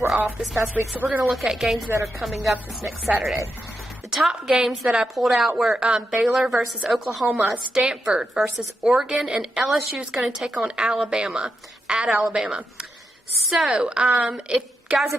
off this past week, so we're going to look at games that are coming up this next Saturday. The top games that I pulled out were Baylor versus Oklahoma, Stanford versus Oregon, and LSU is going to take on Alabama, at Alabama. So,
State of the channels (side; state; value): both; normal; correlation 0.85